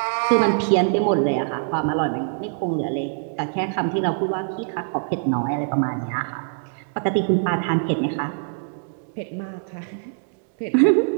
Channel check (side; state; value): left; silent; digital silence